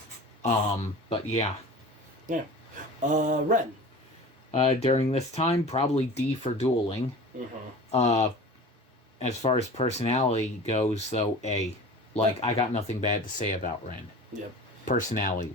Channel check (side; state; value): both; normal; correlation 0.38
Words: But yeah. Yeah. Ren. During this time, probably D for dueling. Mm-hmm. As far as personality goes, though, A. I got nothing bad to say about Ren. Yep.